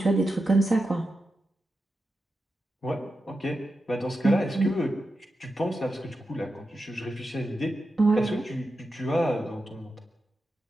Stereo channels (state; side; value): normal; both; correlation 0.89